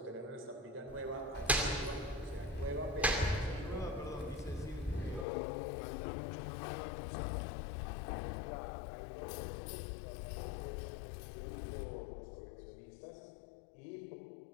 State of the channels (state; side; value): drops out; right; at 5.2 s